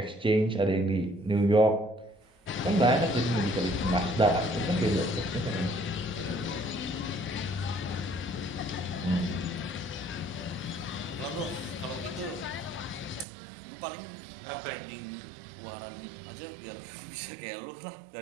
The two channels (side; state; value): left; drops out; at 13.2 s